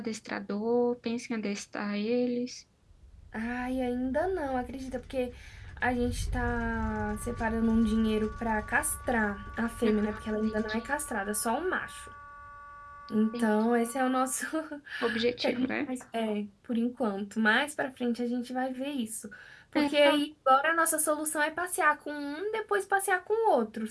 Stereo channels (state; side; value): identical; both; correlation 1.00